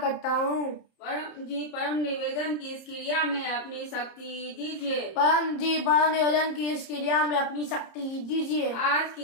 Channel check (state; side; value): late; right; 30 ms